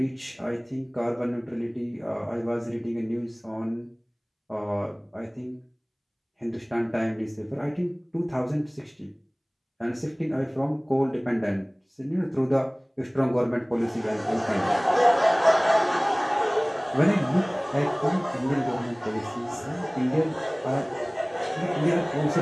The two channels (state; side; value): identical; both; correlation 1.00